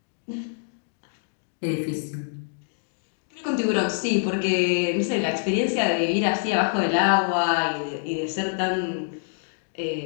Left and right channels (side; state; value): right; silent; digital silence